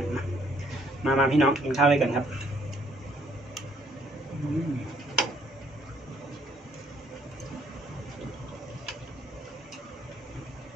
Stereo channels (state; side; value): normal; both; correlation 0.66